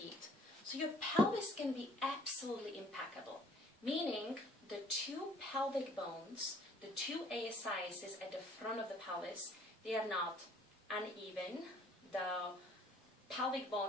so your pelvis can be absolutely impeccable, meaning the 2 pelvic bones, the 2 ASIs at the front of the pelvis, they are not uneven. The pelvic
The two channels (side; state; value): both; normal; correlation 0.57